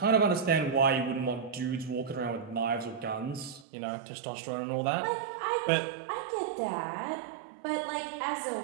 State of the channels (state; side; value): drops out; left; at 3.7 s